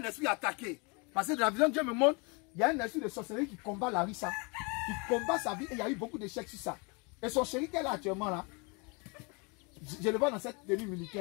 esprit attaqué. Parce que dans la vision Dieu me montre, il y a un esprit de sorcellerie qui combat Larissa, qui combat sa vie et il y a eu beaucoup d'échecs sur ça. Et son chéri qu'elle a actuellement là, je le vois dans cette tenue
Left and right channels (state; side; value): quieter; right; 31.1 dB